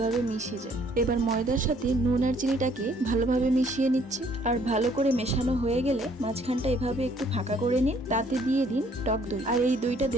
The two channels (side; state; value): both; normal; correlation 0.62